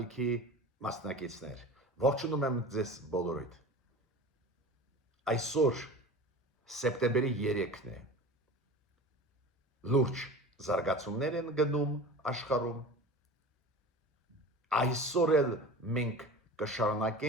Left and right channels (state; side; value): normal; both; correlation 0.36